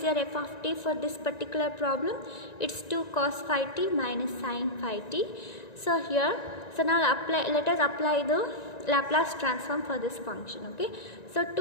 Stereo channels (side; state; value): right; late; 1.9 ms